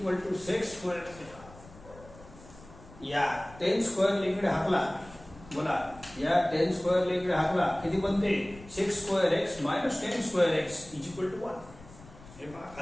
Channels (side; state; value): left; noise; rumble, 20 dB below the sound